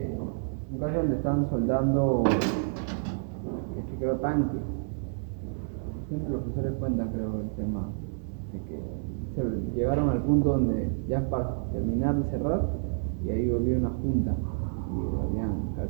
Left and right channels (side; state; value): left; silent; digital silence